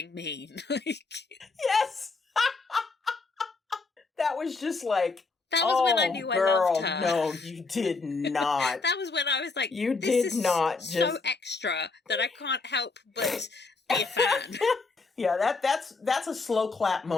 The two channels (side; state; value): right; quieter; 4.0 dB